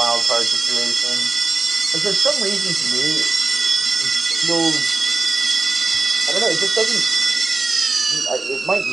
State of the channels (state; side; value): quieter; left; 3.8 dB